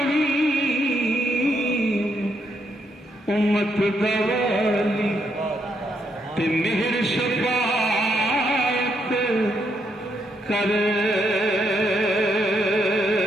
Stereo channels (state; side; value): normal; both; correlation 0.77